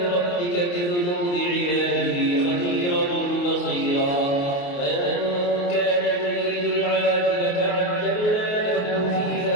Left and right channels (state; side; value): late; right; 28 ms